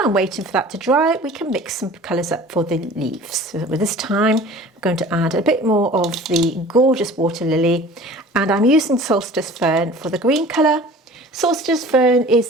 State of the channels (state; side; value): normal; both; correlation 0.44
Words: waiting for that to dry, we can mix some colours up for the leaves. So with this time, I'm going to add a bit more of the gorgeous Waterlily, and I'm using Solstice Fern for the green colour. Solstice Fern is